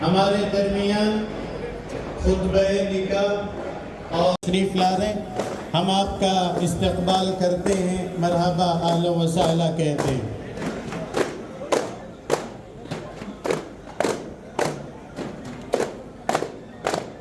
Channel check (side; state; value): both; identical; correlation 1.00